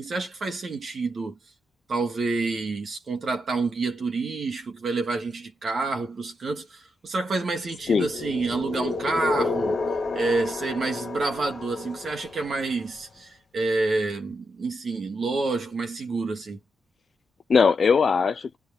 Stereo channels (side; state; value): both; normal; correlation 0.83